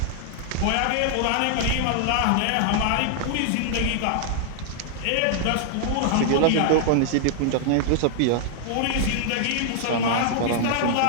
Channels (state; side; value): different; both; correlation -0.01